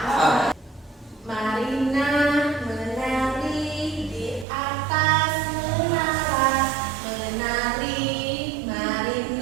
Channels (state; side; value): drops out; left; at 4.5 s